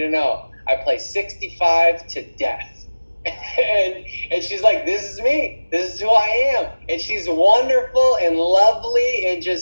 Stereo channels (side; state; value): both; inverted; correlation -1.00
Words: know, I play 65 to death. and she's like, this is me, this is who I am. And she's wonderful and lovely, and